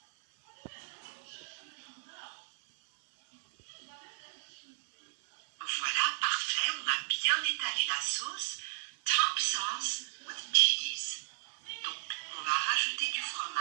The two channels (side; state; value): left; silent; 55 dB below the other